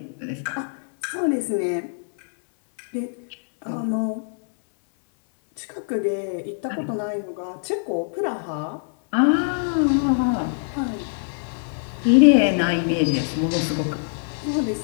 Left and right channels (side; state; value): right; silent; 63 dB below the other